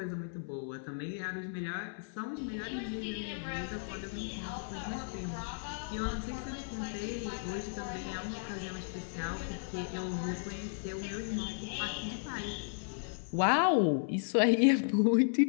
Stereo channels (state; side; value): silent; right; 55 dB below the other